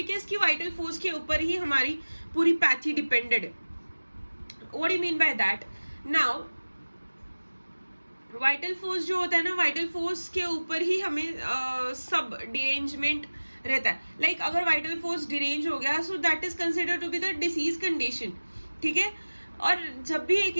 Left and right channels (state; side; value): inverted; both; correlation -1.00